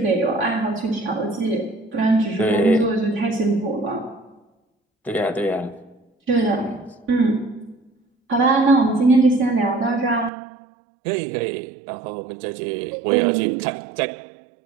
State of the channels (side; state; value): left; drops out; at 10.3 s